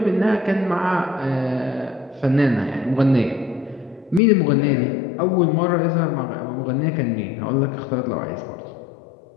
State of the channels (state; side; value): drops out; right; at 4.2 s